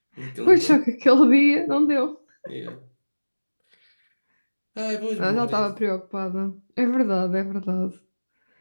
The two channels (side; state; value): both; inverted; correlation -1.00